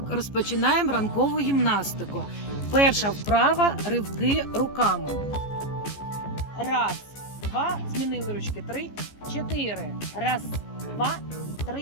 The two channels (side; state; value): right; late; 14 ms